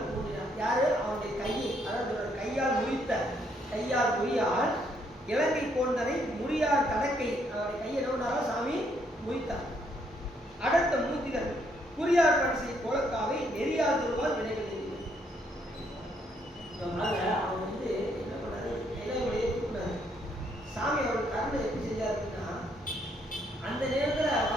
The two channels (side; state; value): both; normal; correlation 0.71